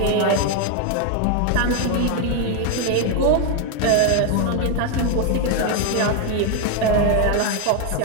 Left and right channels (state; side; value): different; both; correlation 0.01